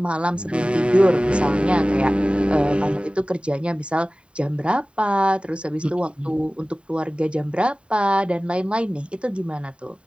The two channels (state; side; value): late; left; 0.055 ms